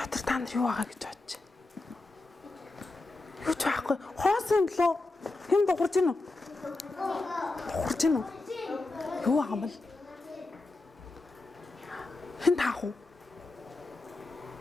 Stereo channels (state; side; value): quieter; right; 3.1 dB